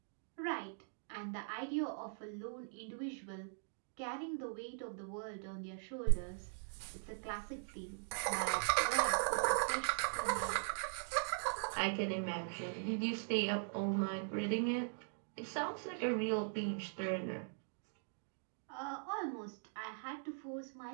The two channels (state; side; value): silent; left; digital silence